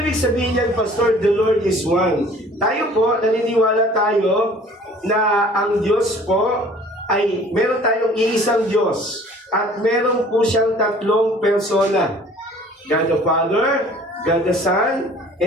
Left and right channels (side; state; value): both; normal; correlation 0.51